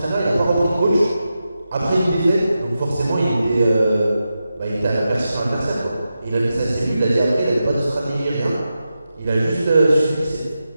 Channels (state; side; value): inverted; both; correlation -0.90